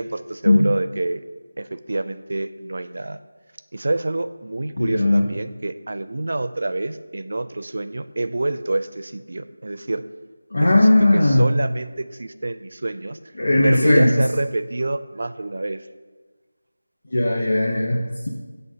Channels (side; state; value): both; inverted; correlation -0.97